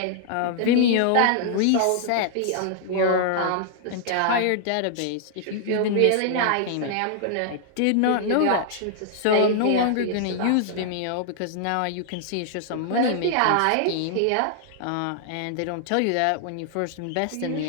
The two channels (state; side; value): different; both; correlation -0.01